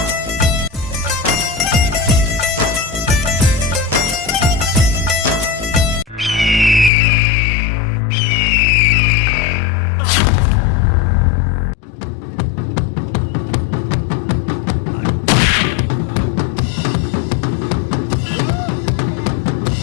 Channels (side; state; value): right; drops out; at 6.9 s